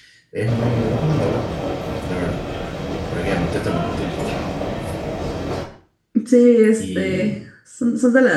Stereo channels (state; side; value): identical; both; correlation 1.00